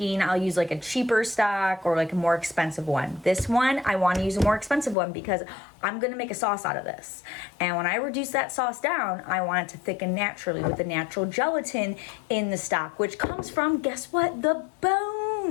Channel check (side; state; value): right; drops out; at 5.0 s